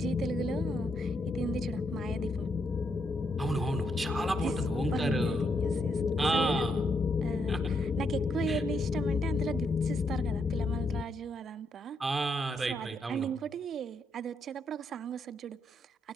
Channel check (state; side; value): normal; both; correlation 0.78